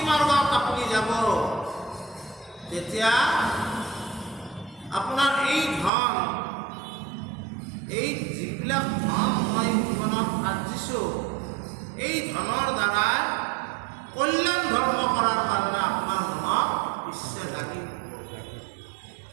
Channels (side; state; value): left; drops out; at 5.9 s